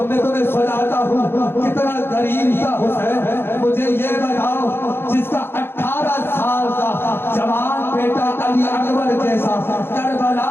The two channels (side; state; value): right; late; 0.11 ms